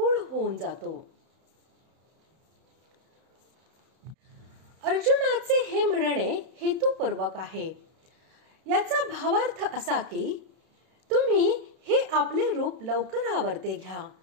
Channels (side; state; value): left; late; 31 ms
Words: होऊन जातो. अर्जुनाचे हे म्हणणे हेतुपूर्वक आहे. याचा भावार्थ असा की तुम्ही हे आपले रूप लवकर आवरते घ्या